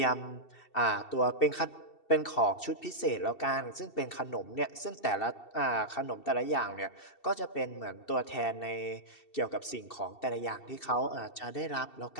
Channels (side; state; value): right; late; 2.7 ms